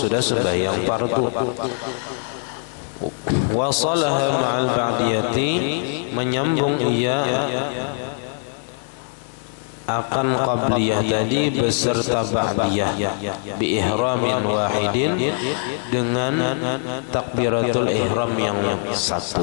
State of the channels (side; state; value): right; silent; 58 dB below the other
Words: sembahyang fardu. Wasalaha ma'al ba'diyati, menyambung ia akan qabliyah tadi beserta ba'diyah bi ihramin wahidin, dengan takbiratul ihram yang satu.